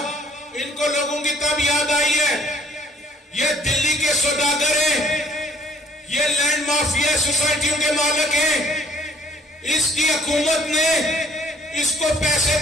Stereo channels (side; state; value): both; normal; correlation 0.59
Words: ان کو لوگوں کی تب یاد آئی ہے یہ دلی کے سوداگر ہیں, یہ لینڈ مافیا سوسائٹیوں کے مالک ہیں. اس کی حکومت نے اس کو پیسے